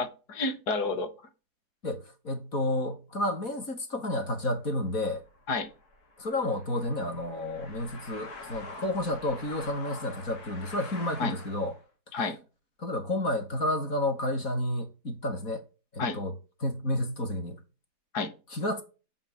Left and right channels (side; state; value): right; late; 4.1 ms